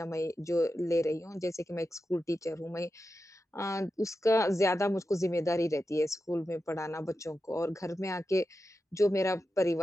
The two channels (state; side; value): normal; both; correlation 0.90